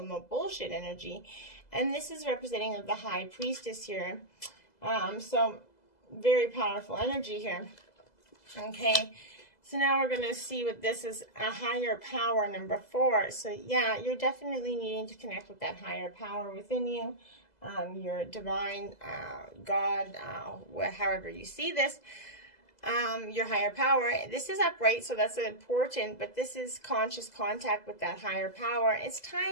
no bullshit energy. And this is representing of the High Priestess here. So very powerful energy here. Okay. So now we're going to see what this is, a higher power, number 4. So yeah, you're definitely needing to connect with that higher power within you, your divine God, however you see this, your higher power. This is upright, so that's important, but this is conscious contact with that higher power. It's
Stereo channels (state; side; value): late; right; 2.0 ms